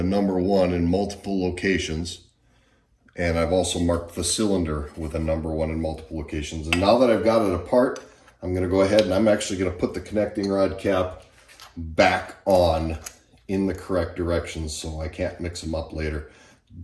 number 1 in multiple locations. And I've also marked the cylinder with a number 1 in multiple locations. And now that I've got it apart, I'm going to go ahead and I'm actually going to put the connecting rod cap back on in the correct direction so I can't mix them up later.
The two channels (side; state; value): both; identical; correlation 1.00